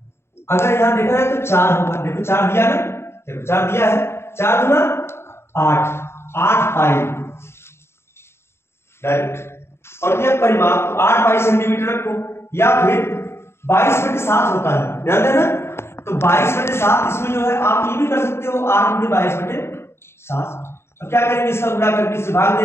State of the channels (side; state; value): right; late; 0.12 ms